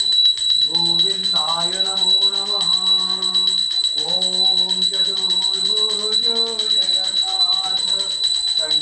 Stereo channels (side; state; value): both; identical; correlation 1.00